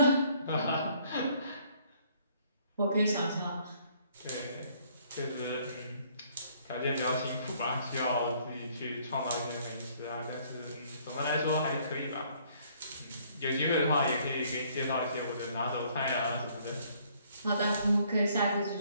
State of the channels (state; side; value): inverted; both; correlation -0.62